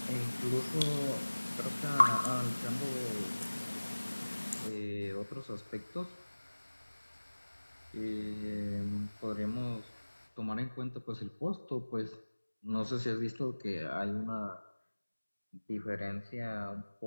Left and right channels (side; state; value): both; inverted; correlation -1.00